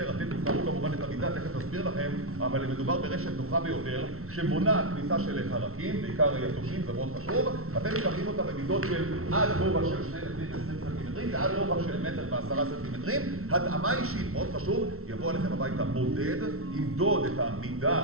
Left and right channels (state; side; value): late; left; 0.63 ms